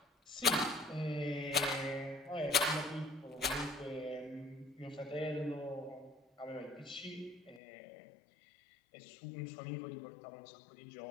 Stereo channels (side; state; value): right; drops out; at 7.6 s